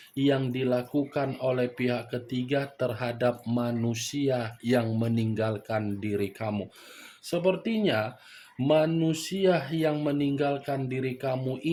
yang dilakukan oleh pihak ketiga terhadap manusia yang meninggalkan diri kamu. Sepertinya manusia yang meninggalkan diri kamu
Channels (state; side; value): identical; both; correlation 1.00